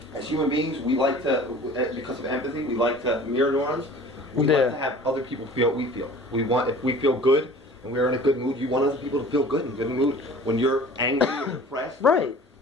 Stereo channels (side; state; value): both; normal; correlation 0.45